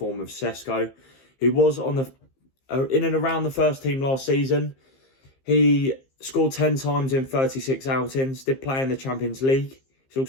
of Sesko, who was on the in and around the first team last season. He scored 10 times in 36 outings, did play in the Champions League. He's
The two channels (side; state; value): right; late; 15 ms